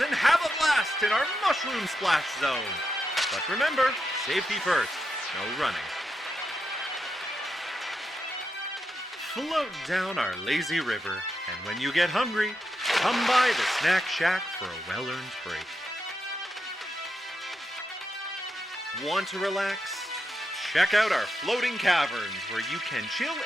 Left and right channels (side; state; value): both; normal; correlation 0.85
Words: and have a blast in our mushroom splash zone. But remember, safety first, no running. Float down our lazy river, and when you get hungry, come by the Snack Shack for a well-earned break. Want to relax? Check out our floating caverns where you can chill